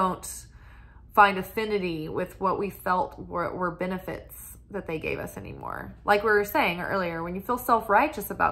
find affinity with what we felt were benefits that they gave us anymore. Like we were saying earlier, when you feel self-righteous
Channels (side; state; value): both; identical; correlation 1.00